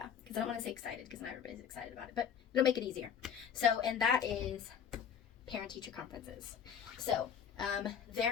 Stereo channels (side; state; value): right; quieter; 7.9 dB